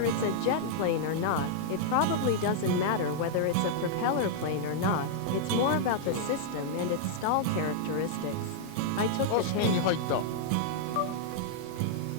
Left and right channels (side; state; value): both; different; correlation -0.01